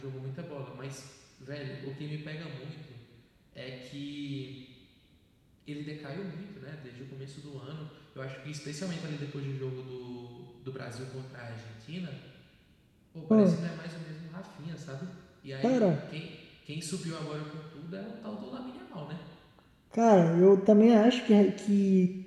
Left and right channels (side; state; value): both; identical; correlation 1.00